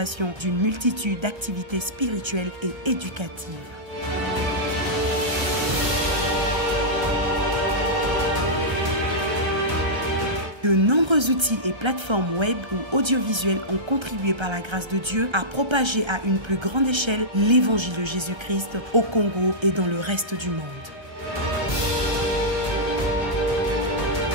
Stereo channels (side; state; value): left; late; 1.3 ms